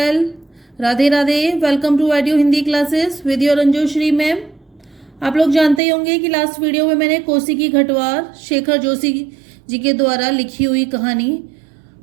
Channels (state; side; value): drops out; left; at 5.8 s